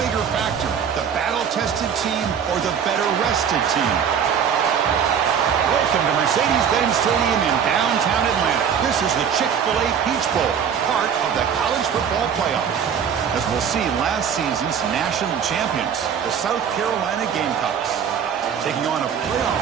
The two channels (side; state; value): left; quieter; 7.7 dB